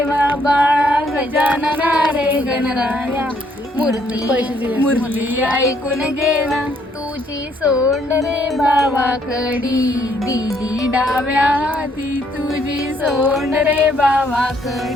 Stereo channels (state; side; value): normal; both; correlation 0.68